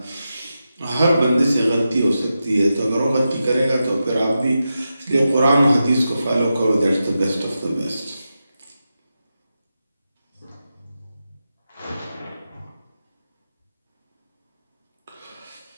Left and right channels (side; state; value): both; inverted; correlation -0.90